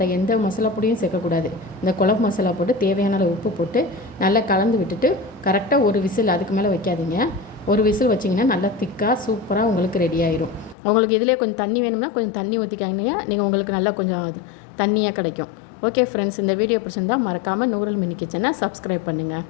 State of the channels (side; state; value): right; drops out; at 10.8 s